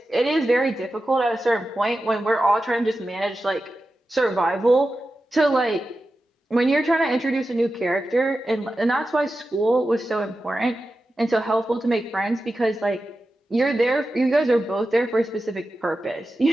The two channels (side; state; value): both; normal; correlation 0.92